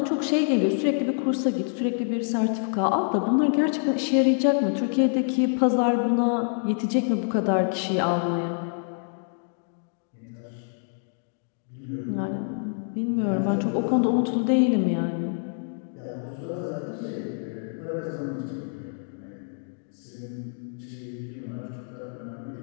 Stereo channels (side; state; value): right; silent; digital silence